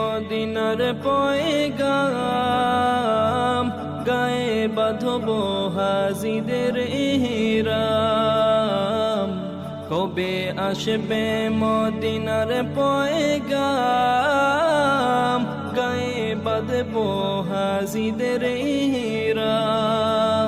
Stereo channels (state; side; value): identical; both; correlation 1.00